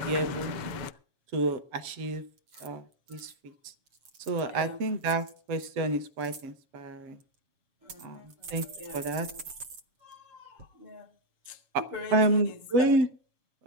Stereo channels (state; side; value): late; left; 7.5 ms